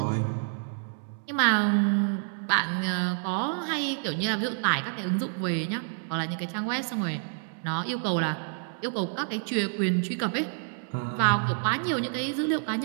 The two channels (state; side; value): silent; left; 59 dB below the other